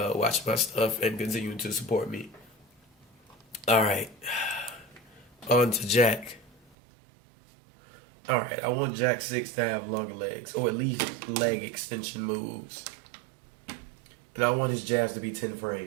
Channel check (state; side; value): drops out; left; at 6.6 s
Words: watching my stuff and continuing to support me. All right, on to Jack. All right, I want Jack 6 to have longer legs, or at least leg extension moves. And I want his jabs to be 10